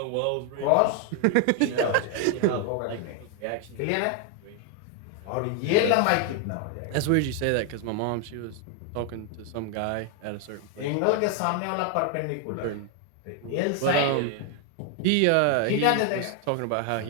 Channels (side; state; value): both; different; correlation 0.00